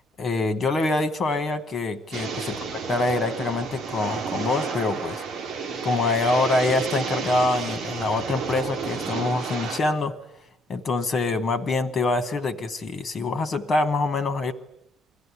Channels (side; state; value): both; normal; correlation 0.67